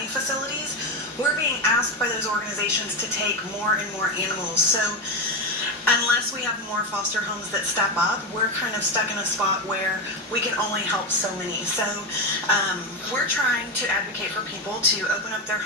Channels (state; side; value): normal; both; correlation 0.14